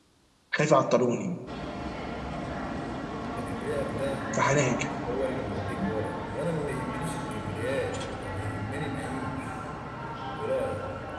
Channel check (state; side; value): identical; both; correlation 1.00